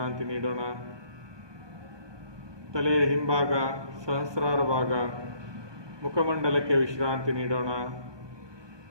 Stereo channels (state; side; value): late; left; 1.2 ms